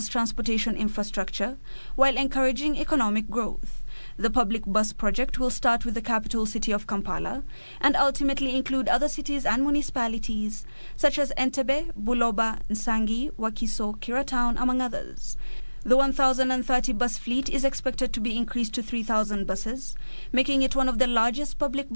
transportation infrastructure while encouraging economic growth. The public bus project will start with the capital city of Kampala and ultimately include other cities and municipalities such as Entebbe, Buloba, Nsangi, Wakiso, Kiratown, among others. The 1,030 bus fleet is expected to be increased to 3,000 buses, making it one of the largest public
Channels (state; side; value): inverted; both; correlation -1.00